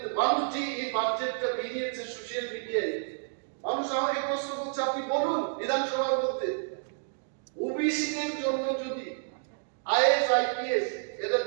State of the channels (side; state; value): left; silent; digital silence